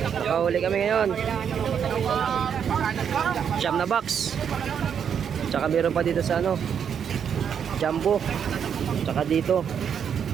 Nakahuli kami ngayon. Siyam na box. Tsaka meron pa dito sa ano, Jumbo. Tsaka dito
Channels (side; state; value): left; quieter; 7.8 dB